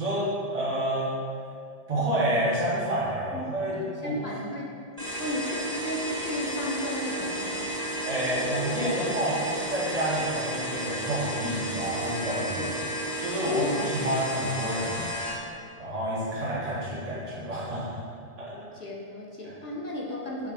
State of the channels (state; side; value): late; left; 1.8 ms